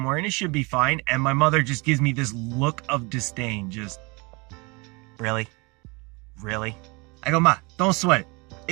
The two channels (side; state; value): left; quieter; 28.0 dB